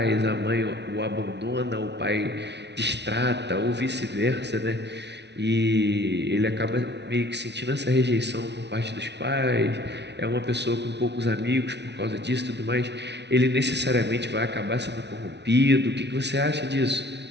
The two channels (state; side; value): late; left; 0.50 ms